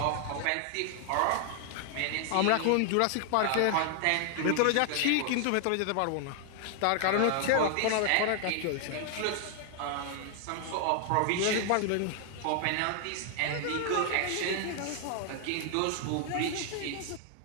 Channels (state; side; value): different; both; correlation 0.00